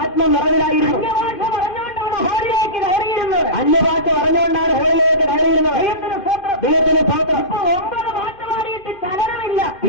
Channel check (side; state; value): right; late; 2.5 ms